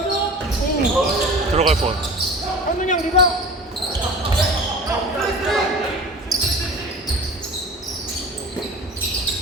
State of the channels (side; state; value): both; normal; correlation 0.38